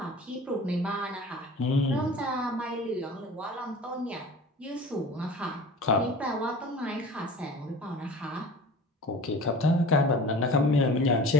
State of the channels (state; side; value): normal; both; correlation 0.40